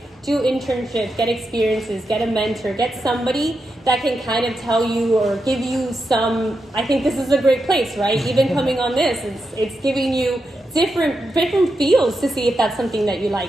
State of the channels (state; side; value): normal; both; correlation 0.86